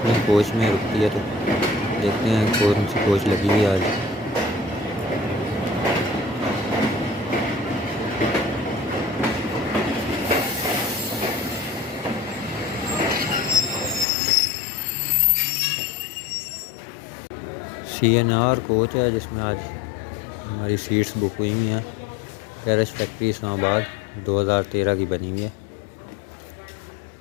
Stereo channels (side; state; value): right; drops out; at 14.1 s